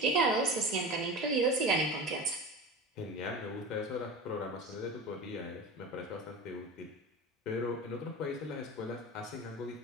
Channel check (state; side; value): normal; both; correlation 0.31